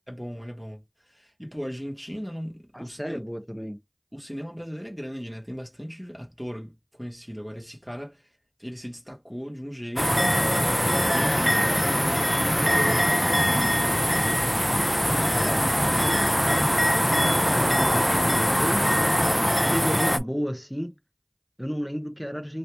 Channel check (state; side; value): identical; both; correlation 1.00